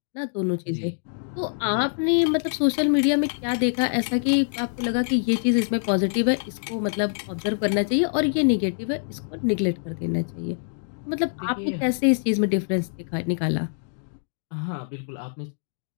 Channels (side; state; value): right; silent; digital silence